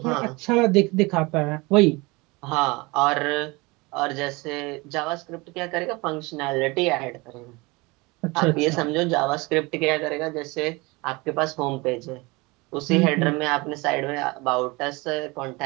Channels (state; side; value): quieter; left; 24.8 dB